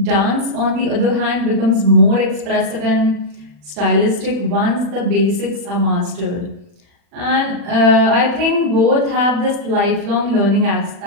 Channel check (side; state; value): left; late; 40 ms